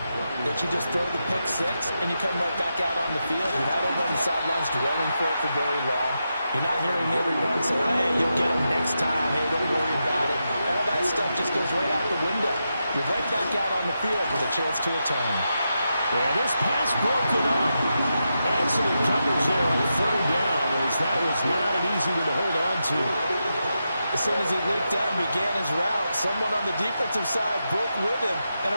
that you just throw the pick six and you come right back out on the field. You're not over on the sidelines dwelling for it for very long. You're not hearing everyone say, hey, you'll get them next time. Hey, don't worry about it. All that stuff just goes right out the window. You're right back out on the field with a chance to atone. Yeah, this pass broken up. Excellent coverage there on 3rd down, as that was not an easy one to hold on to. As soon as he leaked out and began his route, someone on the defensive side broke with him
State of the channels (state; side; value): inverted; both; correlation -0.87